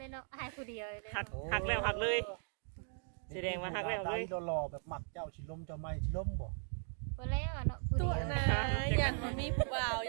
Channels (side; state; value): left; silent; 52 dB below the other